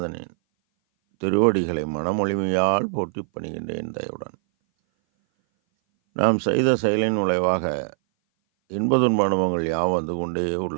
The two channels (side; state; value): left; silent; 59 dB below the other